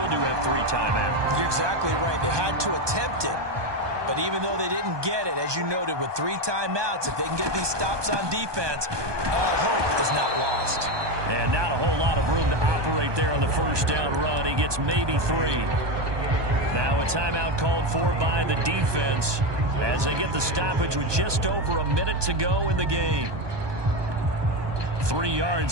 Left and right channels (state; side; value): late; left; 1.2 ms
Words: do have 3 timeouts. You're exactly right. They had to attempt it. But even though they didn't get it, as you noted, with 3 timeouts, if they can get these stops on defense, all hope is not lost. And not a whole lot of room to operate there on the first down run. He gets maybe 3. Now a timeout called for by the defense as they get the stoppage with just over a minute to go in the game. 3